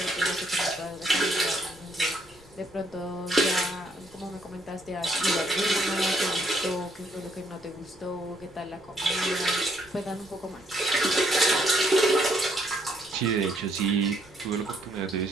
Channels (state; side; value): noise; left; rumble, 26 dB below the sound